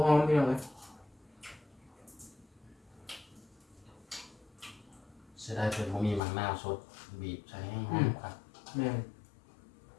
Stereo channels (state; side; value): drops out; right; at 6.2 s